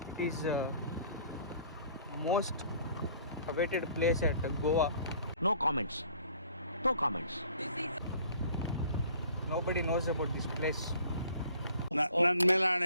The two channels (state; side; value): inverted; both; correlation -0.54